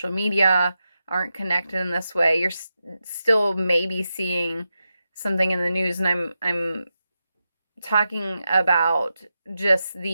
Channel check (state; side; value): inverted; both; correlation -0.89